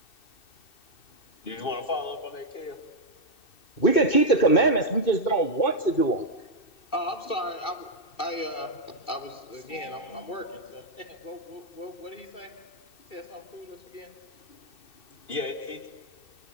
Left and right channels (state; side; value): late; right; 2.6 ms